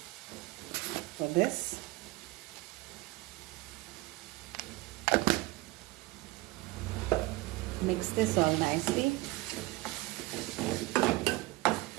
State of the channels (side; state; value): left; quieter; 20.8 dB